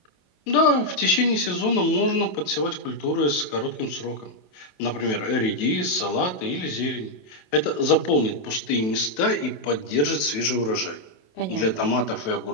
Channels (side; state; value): right; late; 27 ms